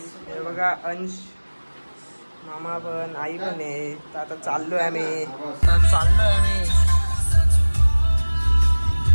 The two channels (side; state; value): both; inverted; correlation -1.00